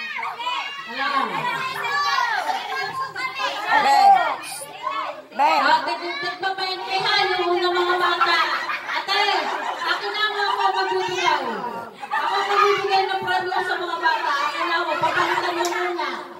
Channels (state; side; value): identical; both; correlation 1.00